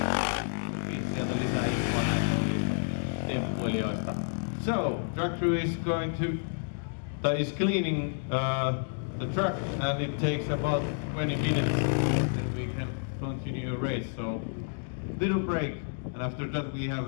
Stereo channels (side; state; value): right; silent; digital silence